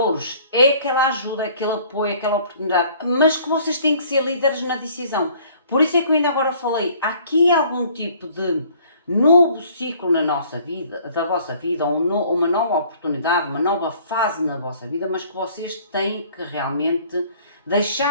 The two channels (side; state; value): both; inverted; correlation -0.55